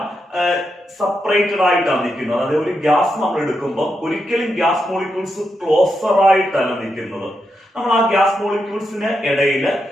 സെപ്പറേറ്റഡ് ആയിട്ടാണ് നിൽക്കുന്നത്. അതായത് ഒരു ഗ്യാസ് നമ്മൾ എടുക്കുമ്പോൾ ഒരിക്കലും ഗ്യാസ് മോളിക്യൂൾസ് ക്ലോസർ ആയിട്ടല്ല നിൽക്കുന്നത്. നമ്മൾ ആ ഗ്യാസ് മോളിക്യൂൾസിന് ഇടയിൽ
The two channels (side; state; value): both; normal; correlation 0.84